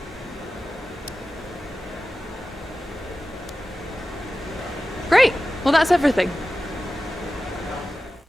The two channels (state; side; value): normal; both; correlation 0.95